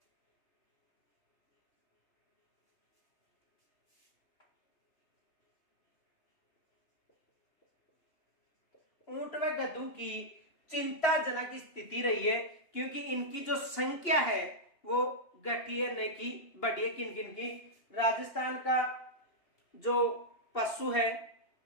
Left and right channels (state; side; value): late; right; 2.8 ms